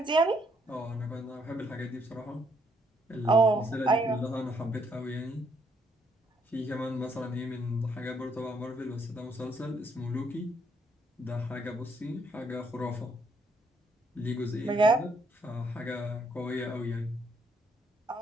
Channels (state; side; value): normal; both; correlation 0.71